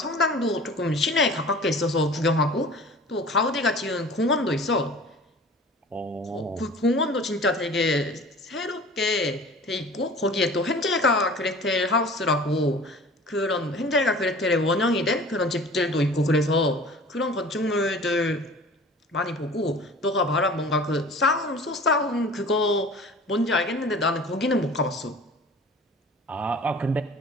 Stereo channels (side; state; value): both; normal; correlation 0.43